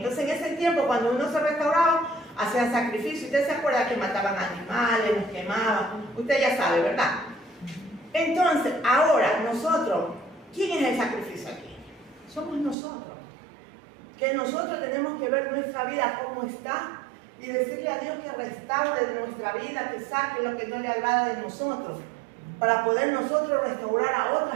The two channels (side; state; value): left; drops out; at 12.8 s